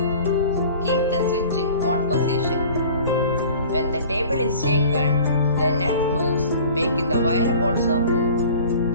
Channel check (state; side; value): inverted; both; correlation -0.45